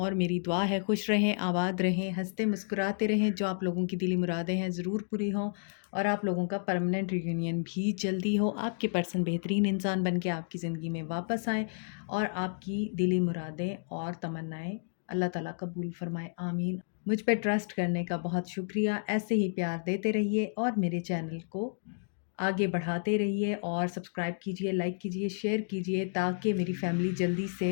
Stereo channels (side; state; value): right; silent; digital silence